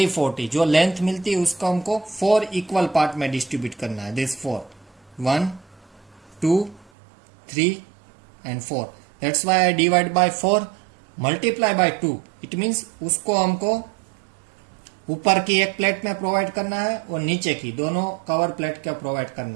जो length मिलती है उसको हमको 4 equal part में distribute करना है. This 4 1 2 3 and 4. That's why I divide by 4 multiply by 2. It means उसको हमको ऊपर की एक प्लेट में प्रोवाइड करना है और नीचे की दोनों कवर प्लेट का प्रोवाइड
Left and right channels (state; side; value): drops out; left; at 6.9 s